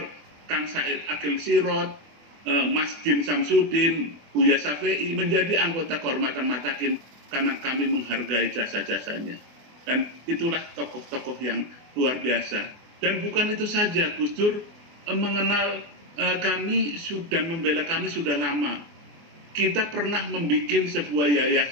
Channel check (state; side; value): late; left; 24 ms